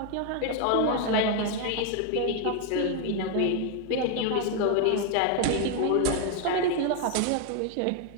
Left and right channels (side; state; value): both; different; correlation 0.01